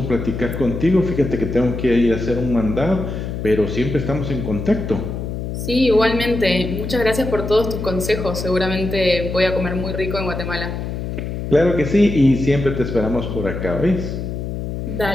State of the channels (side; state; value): left; noise; hum, 5 dB below the sound